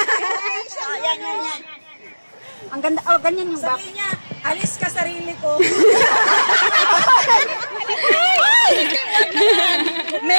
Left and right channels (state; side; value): inverted; both; correlation -1.00